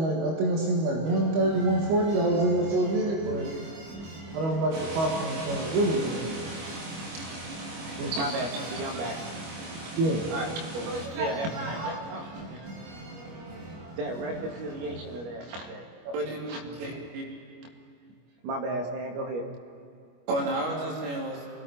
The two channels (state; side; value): late; left; 25 ms